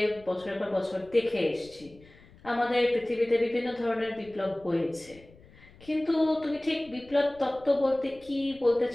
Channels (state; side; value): noise; left; rumble, 25 dB below the sound